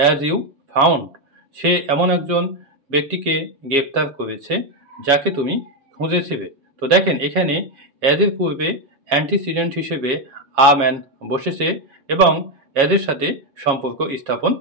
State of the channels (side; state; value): left; late; 7.3 ms